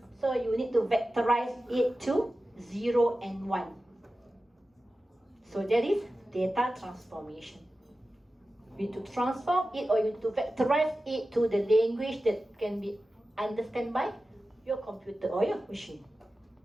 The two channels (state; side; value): normal; both; correlation 0.94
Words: so you need to vectorize it to 0 and 1. So that is data transformation. You need to transform it or you need to vectorize it to the language that can be understood by your computer or your machine.